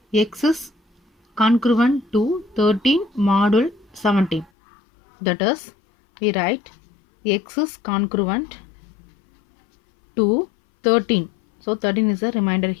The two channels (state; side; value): drops out; right; at 4.5 s